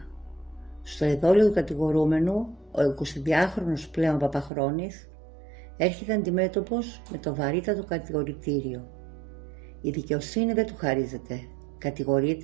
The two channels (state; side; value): drops out; left; at 4.5 s